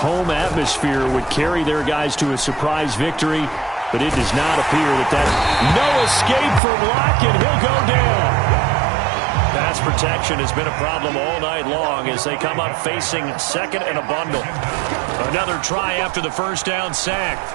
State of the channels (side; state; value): left; drops out; at 6.6 s